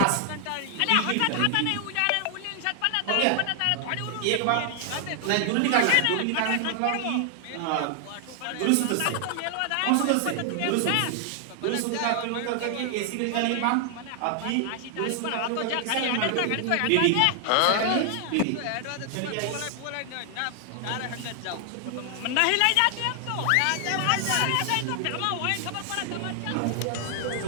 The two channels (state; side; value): different; both; correlation 0.00